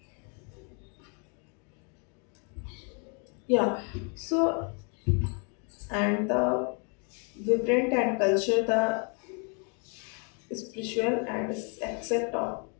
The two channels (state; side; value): quieter; right; 37.7 dB